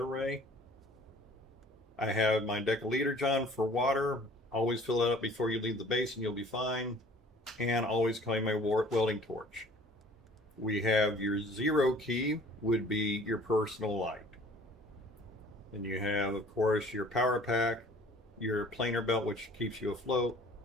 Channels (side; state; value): both; normal; correlation 0.52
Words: I have my decaliter John for water. Always fill it up before you leave the base and you'll be fine. And always carry my welding torch. We have your zero key would be your personal light. And you have, of course, your power pack, your planer belt, which keeps you afloat,